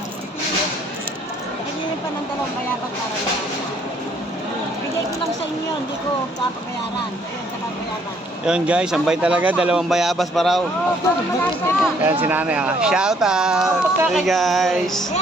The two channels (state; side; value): normal; both; correlation 0.65